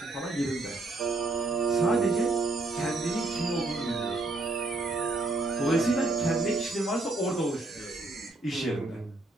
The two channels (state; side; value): quieter; left; 3.0 dB